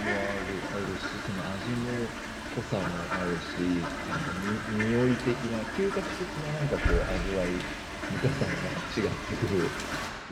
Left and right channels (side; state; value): both; identical; correlation 1.00